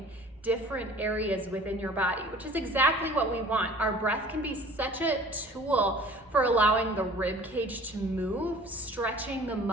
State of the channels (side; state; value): both; normal; correlation 0.47